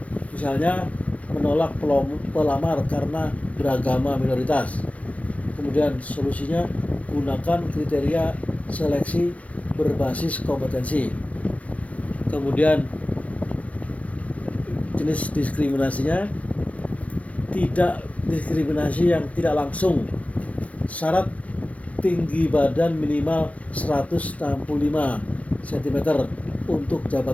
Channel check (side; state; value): right; late; 0.066 ms